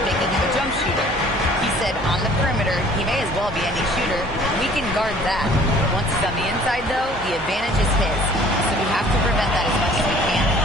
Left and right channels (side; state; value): right; noise; hum, 15 dB below the sound